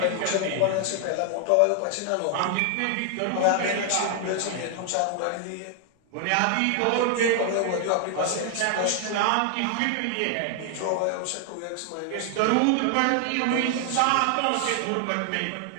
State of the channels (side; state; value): both; different; correlation 0.00